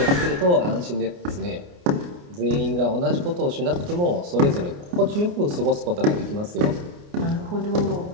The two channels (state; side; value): late; left; 29 ms